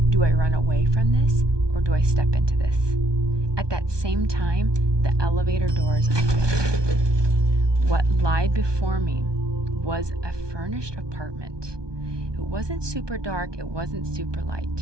Do I run away from this or do I step into this? At that same time, the elevator doors opened. What lied before me was a furnished apartment. It wasn't super dark, it wasn't super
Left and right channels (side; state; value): left; late; 1.2 ms